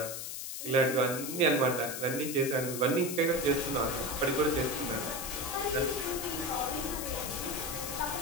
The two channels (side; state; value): left; noise; hiss, 6 dB below the sound